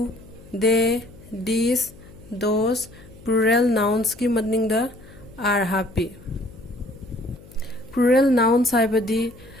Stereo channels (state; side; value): noise; left; hum, 21 dB below the sound